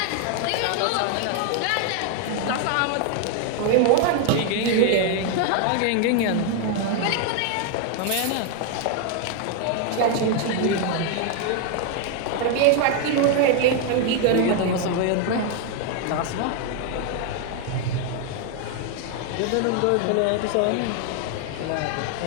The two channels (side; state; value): both; different; correlation 0.00